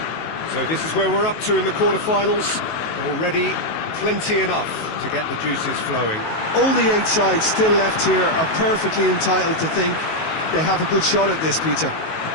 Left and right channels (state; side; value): late; right; 19 ms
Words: So this is where we're up to in the quarterfinals. Already plenty enough to get the juices flowing. All the 8 sides still left here are perfectly entitled to think they have a good shot at this, Peter.